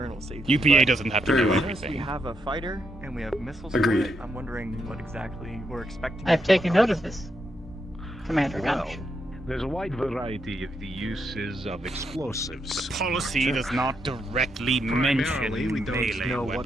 safety. UPA but doesn't have to Very do well. I noticed we everything. have a fighter and we have missiles. Agreed. For it. I'm wondering what exactly we're expecting. I've taken note of this, Commander Well, Gunch. there's a wide variety of the uses of explosives. The policy does not directly mention Primarily, we don't melee know what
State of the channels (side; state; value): both; normal; correlation 0.80